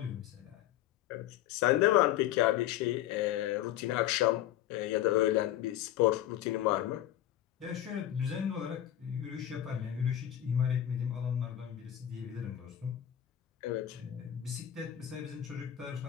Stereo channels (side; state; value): right; quieter; 12.2 dB